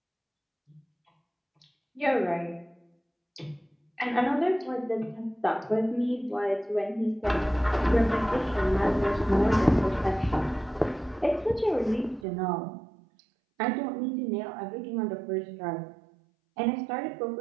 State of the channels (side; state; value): left; drops out; at 12.2 s